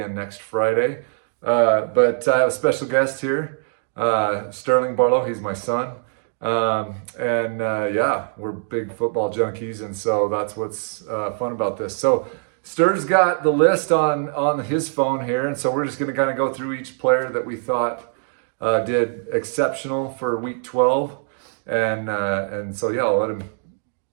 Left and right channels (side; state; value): left; silent; digital silence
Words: next Friday. But I have a special guest here, Sterling Barlow. He's my son. Yeah, we're big football junkies, and so that's what's fun about this. So Ster's got the list on his phone here, and so we're just going to kind of go through each player that we thought did exceptional for Week 12, and so yeah, I'll let him